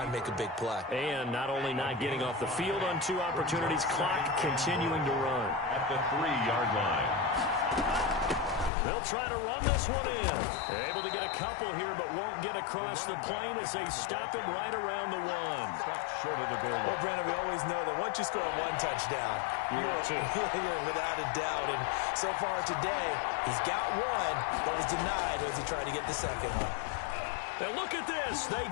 and make a big play. And not only not getting off the field on 2 opportunities, clock continuing to run. At the 3-yard line. They'll try to run this one in. Able to get a couple here, but won't get across the plane as they stop him right around the 1. Stop short of the goal line. Well, Brandon, we always know that once you score one touchdown, you're without a doubt. And so far today, he's got one, but was denied as he tried to get the second one. Now look at this. They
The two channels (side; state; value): right; drops out; at 8.7 s